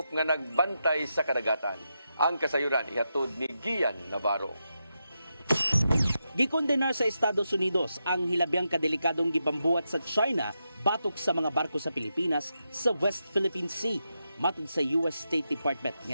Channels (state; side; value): inverted; both; correlation -0.86